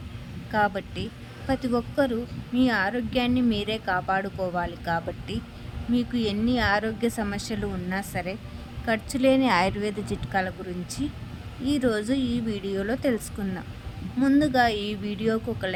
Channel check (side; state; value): both; identical; correlation 1.00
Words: కాబట్టి ప్రతి ఒక్కరూ మీ ఆరోగ్యాన్ని మీరే కాపాడుకోవాలి. కాబట్టి మీకు ఎన్ని ఆరోగ్య సమస్యలు ఉన్నా సరే ఖర్చు లేని ఆయుర్వేద చిట్కాల గురించి ఈరోజు ఈ వీడియోలో తెలుసుకుందాం. ముందుగా ఈ వీడియోకు ఒక